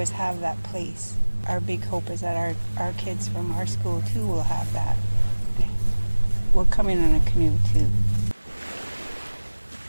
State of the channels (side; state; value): both; inverted; correlation -1.00